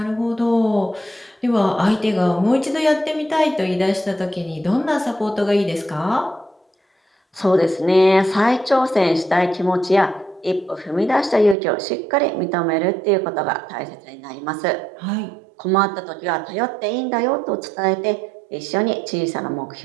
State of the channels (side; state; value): left; drops out; at 11.6 s